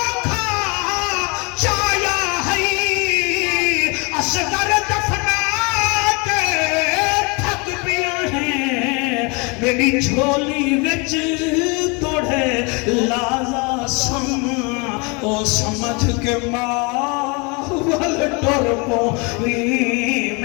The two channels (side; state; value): right; quieter; 30.1 dB